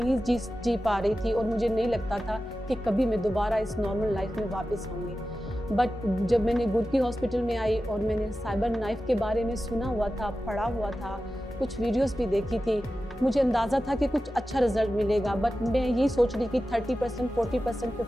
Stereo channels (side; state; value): both; normal; correlation 0.93